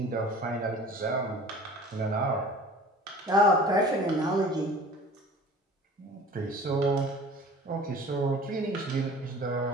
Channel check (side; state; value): both; normal; correlation 0.43